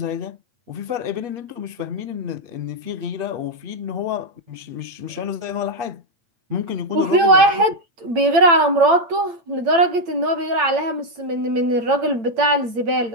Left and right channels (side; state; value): left; late; 8.8 ms